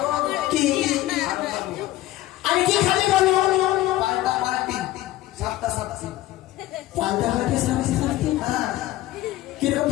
কি আরো খাবো। আর কি খাবে বলো? পাল্টা পাল্টি, সাতটা সাতটা পাল্টা হয়ে সামনে সামনে কিরকম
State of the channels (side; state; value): right; quieter; 15.6 dB